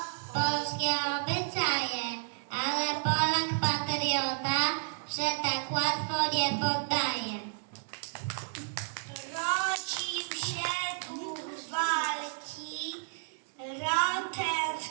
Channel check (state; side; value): silent; left; digital silence